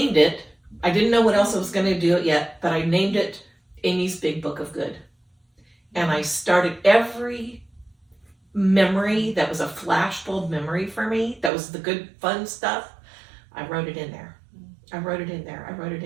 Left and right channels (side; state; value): left; drops out; at 11.5 s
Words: it. I didn't know what else I was going to do it yet, but I named it Amy's Big Book of Good. And I started every memory that was a flashbulb memory for me, that was the good, fun stuff, I wrote it in there. I wrote it in